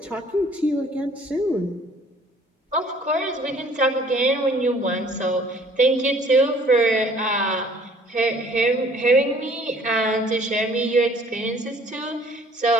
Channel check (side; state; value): both; normal; correlation 0.55